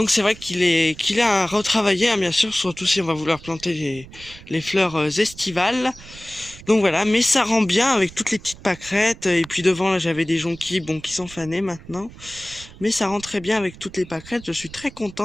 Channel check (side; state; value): right; noise; rumble, 19 dB below the sound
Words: c'est vrai qu'il est à retravailler, bien sûr, surtout si on va vouloir planter les fleurs estivales. Donc voilà, mais ça rend bien avec toutes les petites pâquerettes. Et puis devant là j'avais des jonquilles, bon, qui sont fanées maintenant. Mais ça rend très bien avec toutes les pâquerettes. Je suis très